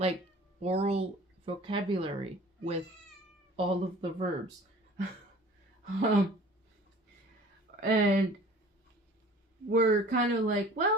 oral vocabulary with all of the verbs. And we're kind of like,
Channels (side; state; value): both; normal; correlation 0.46